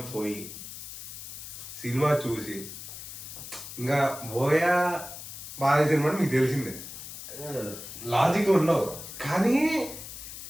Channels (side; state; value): left; noise; hiss, 11 dB below the sound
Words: పోయి సినిమా చూసి ఇంకా బోయా బాగా సినిమా మీకు తెలిసిందే, లాజిక్ ఉండవు. కానీ